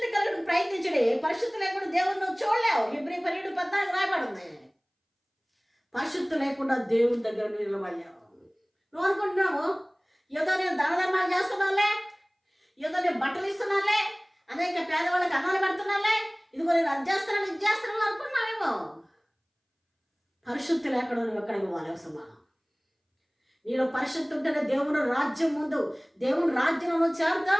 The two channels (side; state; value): both; identical; correlation 1.00